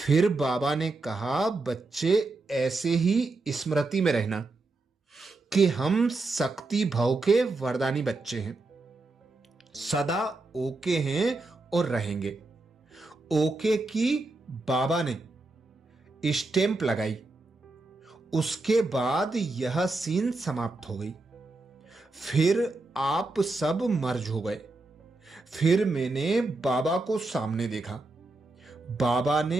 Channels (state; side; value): quieter; left; 3.2 dB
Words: बाबा ने कहा, बच्चे ऐसे ही स्मृति में रहना कि हम शक्ति भाव के वरदानी बच्चे हैं, सदा ओके हैं और रहेंगे। ओके की बाबा ने स्टैंप लगाई। उसके बाद यह सीन समाप्त हो गई। फिर आप सब मर्ज हो गए। फिर मैंने बाबा को सामने देखा। बाबा